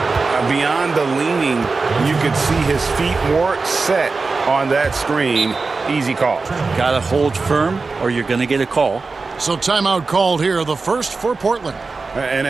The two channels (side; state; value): left; quieter; 4.1 dB